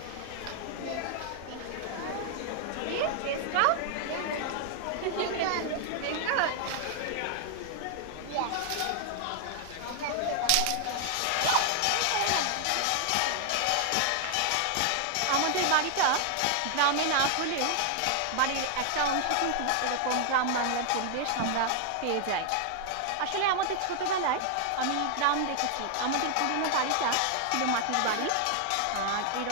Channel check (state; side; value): different; both; correlation 0.00